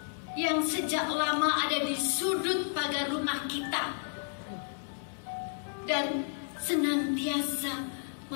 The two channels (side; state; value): right; silent; digital silence